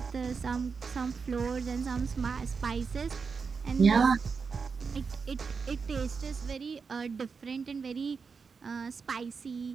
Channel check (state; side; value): quieter; left; 5.3 dB